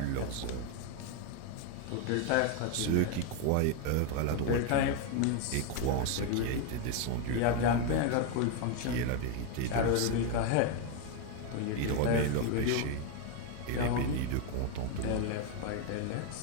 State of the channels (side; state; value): both; different; correlation 0.01